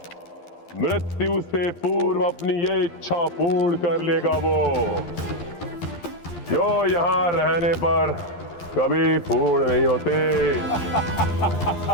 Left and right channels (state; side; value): late; right; 12 ms